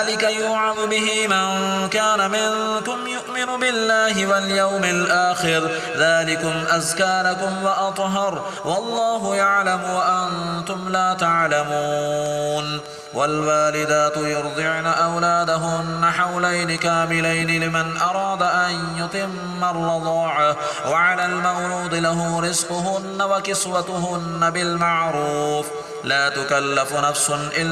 يوعظ به من كان منكم يؤمن بالله واليوم الآخر ذلكم أزكى لكم وأطهر والله يعلم وأنتم لا تعلمون والوالدات يرضعن أولادهن حولين كاملين لمن أراد أن يتم الرضاعة وعلى المولود له رزقهن وكسوتهن بالمعروف لا تكلف نفس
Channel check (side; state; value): both; identical; correlation 1.00